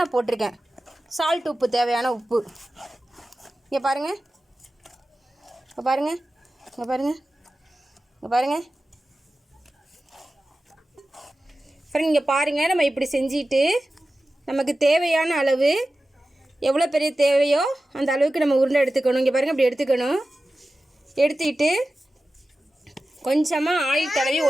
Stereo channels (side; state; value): both; normal; correlation 0.94